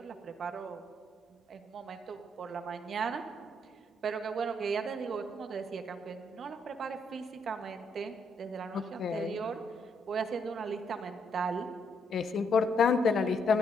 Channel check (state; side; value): normal; both; correlation 0.74